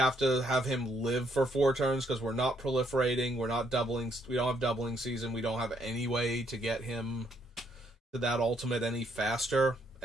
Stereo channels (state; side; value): normal; both; correlation 0.72